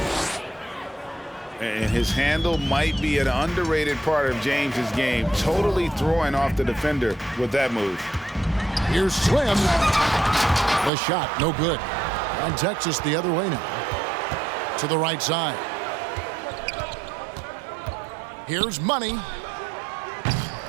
And his handle might be an underrated part of James's game, totally throwing off the defender with that move. Here's Slim. The shot, no good. And Texas the other way now. To the right side. Here's Money.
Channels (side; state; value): left; drops out; at 10.9 s